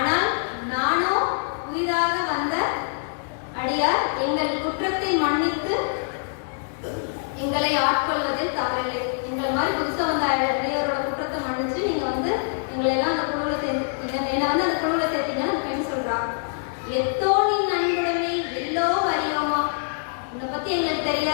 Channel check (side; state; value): right; silent; digital silence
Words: நானோ புதிதாக வந்த அடியார், எங்கள் குற்றத்தை மன்னித்து எங்களை ஆட்கொள்வதில் தவறில்லை. எங்களை மாதிரி புதுசா வந்த அடியாரோட குற்றத்தை மன்னிச்சு நீங்க வந்து எங்களை எல்லாம் அந்த குழுவில் சேர்த்துட்டீங்க, என்னை வந்து அந்த குழுவில் சேர்த்தீங்கன்னு அந்த பெண் சொல்றா. எத்தோனின் அன்புடைமை எல்லோ அறியோமா, உன்னை பத்தி எங்களுக்கு